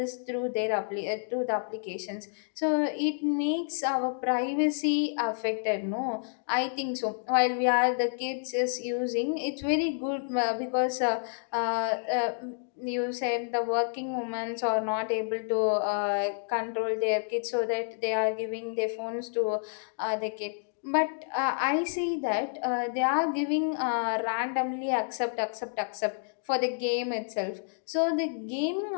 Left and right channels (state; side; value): silent; right; digital silence